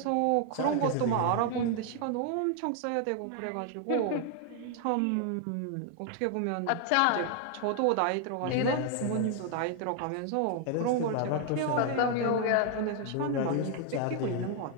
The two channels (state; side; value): different; both; correlation 0.00